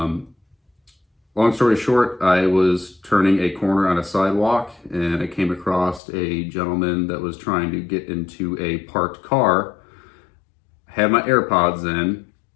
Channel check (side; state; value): right; drops out; at 6.0 s